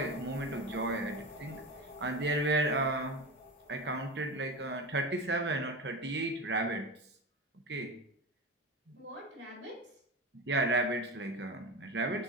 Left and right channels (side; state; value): both; normal; correlation 0.24